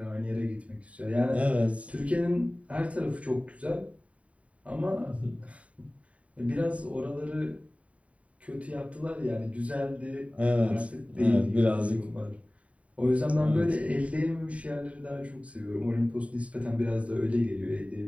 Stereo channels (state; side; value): late; left; 0.066 ms